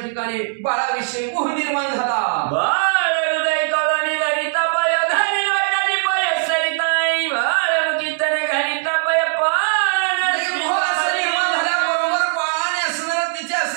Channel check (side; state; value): left; silent; digital silence